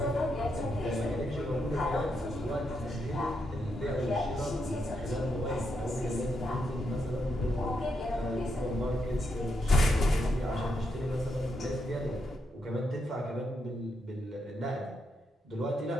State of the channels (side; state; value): both; normal; correlation 0.81